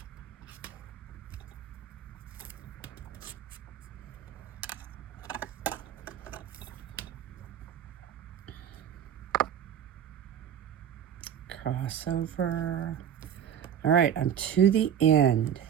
Crossover. All right, I'm to the end.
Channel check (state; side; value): quieter; left; 9.1 dB